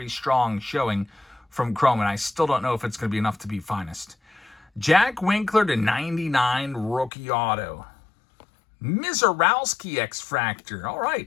strong showing from Chrome, and I still don't know if it's going to be enough to be finest. Jack Winkler to 99 rookie auto. Mizorowski X Factor. All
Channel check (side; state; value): right; drops out; at 7.1 s